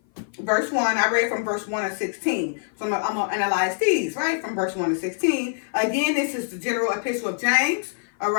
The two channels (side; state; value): right; silent; 56 dB below the other